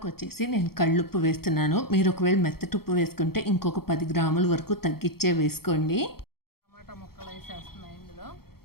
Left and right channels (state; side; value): late; right; 0.94 ms